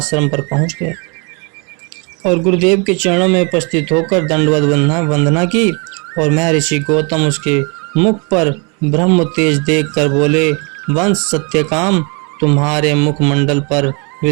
पर पहुंच गया और गुरुदेव के चरणों में उपस्थित होकर दंडवत वंदना की और महर्षि गौतम उसके मुख पर ब्रह्म तेज देखकर बोले, वंश सत्यकाम, तुम्हारे मुखमंडल पर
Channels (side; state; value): left; quieter; 33.5 dB